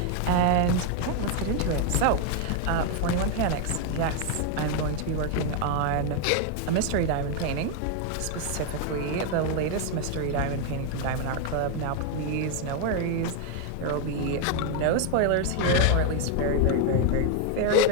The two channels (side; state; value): both; different; correlation 0.01